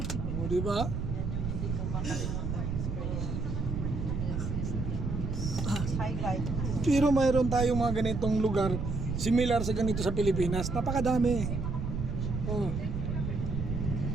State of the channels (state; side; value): noise; right; rumble, 2 dB below the sound